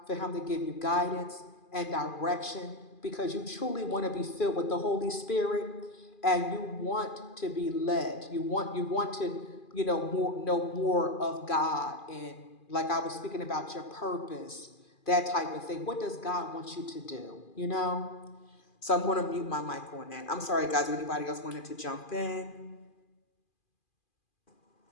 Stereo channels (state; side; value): late; right; 2.4 ms